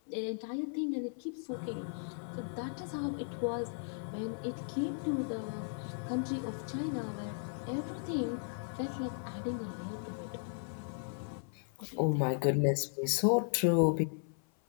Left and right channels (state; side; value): silent; right; 54 dB below the other